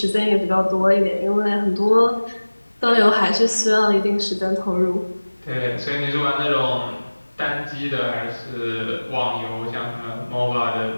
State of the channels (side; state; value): both; inverted; correlation -1.00